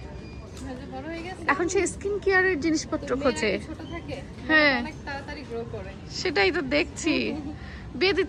এখন সে স্কিন কেয়ারের জিনিসপত্র খোঁজে। হ্যাঁ, সেটাই তো দেখছি, বিয়ে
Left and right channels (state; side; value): identical; both; correlation 1.00